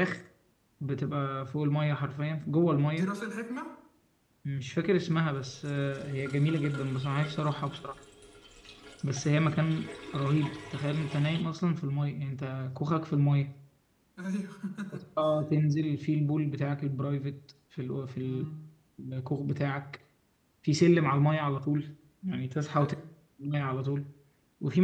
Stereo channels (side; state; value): both; identical; correlation 1.00